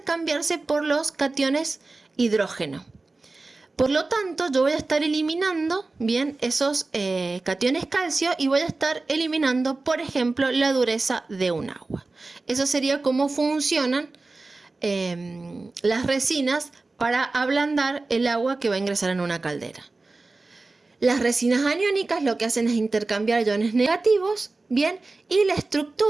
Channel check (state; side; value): quieter; left; 3.4 dB